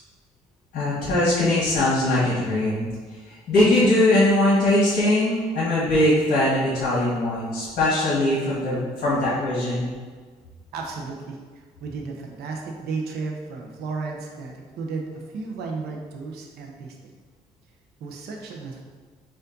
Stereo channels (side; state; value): both; normal; correlation 0.58